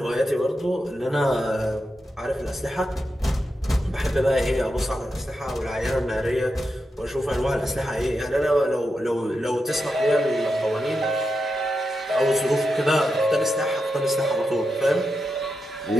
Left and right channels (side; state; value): both; normal; correlation 0.87